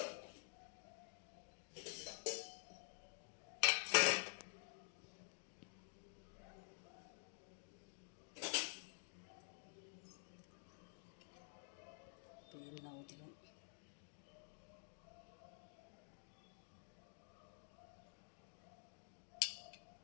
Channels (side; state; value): right; silent; digital silence